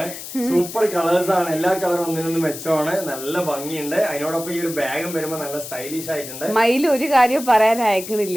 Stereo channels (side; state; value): left; noise; hiss, 11 dB below the sound